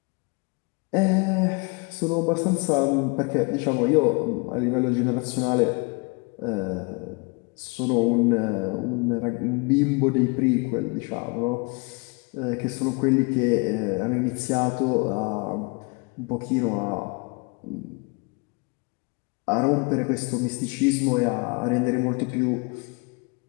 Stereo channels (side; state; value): right; quieter; 30.9 dB